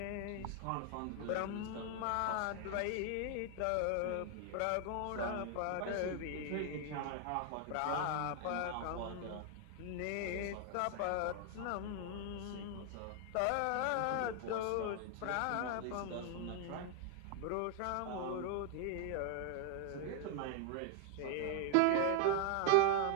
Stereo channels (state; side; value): different; both; correlation 0.00